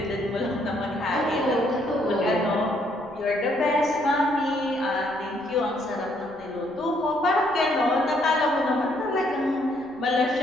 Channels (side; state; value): left; noise; rumble, 27 dB below the sound